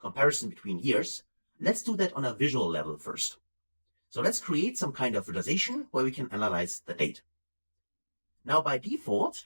between years, let's do that on a visual level first. So let's create some kind of visualization where we can analyze the date. Now by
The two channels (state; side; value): inverted; both; correlation -1.00